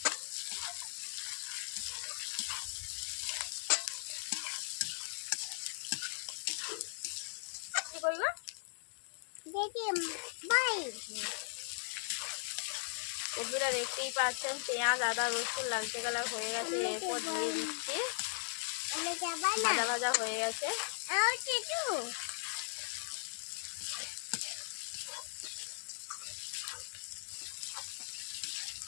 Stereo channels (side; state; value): right; silent; digital silence